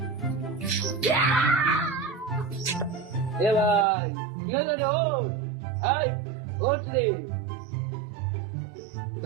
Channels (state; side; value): drops out; left; at 3.9 s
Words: এ ভাই কি হলো রে? ও হাই ওঠ রে।